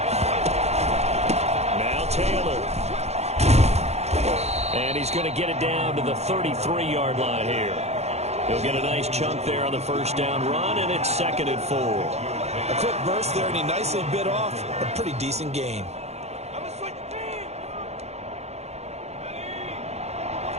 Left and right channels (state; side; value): late; left; 0.31 ms